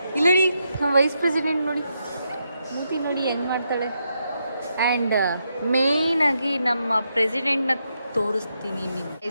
ಇಲ್ಲ ನೋಡಿ ನಮ್ಮ ವೈಸ್ ಪ್ರೆಸಿಡೆಂಟ್ ನೋಡಿ ಮೂತಿ ನೋಡಿ ಹೆಂಗೆ ಮಾಡ್ತಾಳೆ. ಆ್ಯಂಡ್ ಮೇಯ್ನಾಗಿ ನಮ್ಮ ಪ್ರೆಸಿಡೆಂಟ್ನ ತೋರಿಸ್ತೀನಿ ನಿಮ್ಗೆ.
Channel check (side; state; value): both; inverted; correlation -0.82